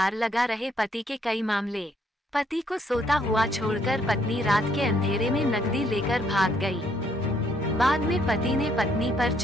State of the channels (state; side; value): normal; both; correlation 0.69